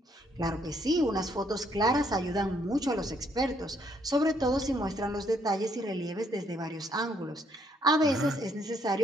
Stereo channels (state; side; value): normal; both; correlation 0.70